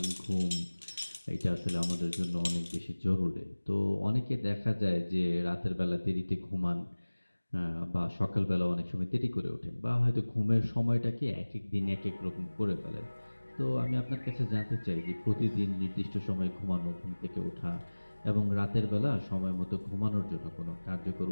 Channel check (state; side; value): inverted; both; correlation -1.00